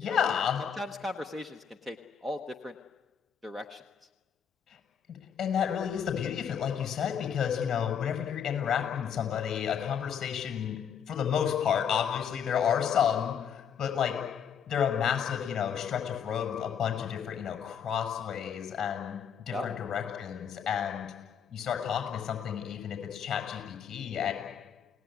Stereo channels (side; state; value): right; quieter; 7.8 dB